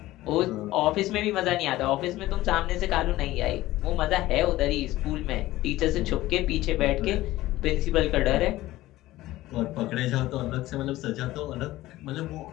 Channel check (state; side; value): quieter; right; 16.6 dB